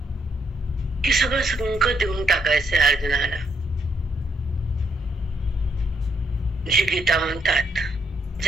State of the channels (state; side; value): normal; both; correlation 0.73